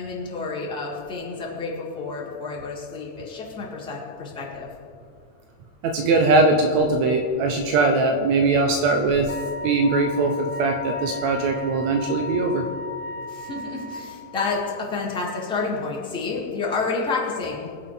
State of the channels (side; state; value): left; late; 8.9 ms